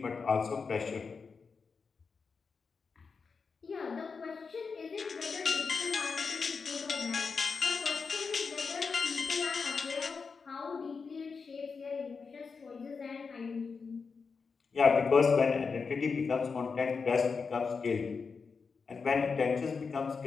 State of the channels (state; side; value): quieter; right; 5.1 dB